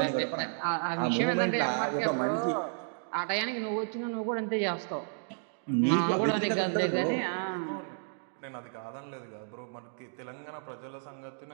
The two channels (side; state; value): left; silent; digital silence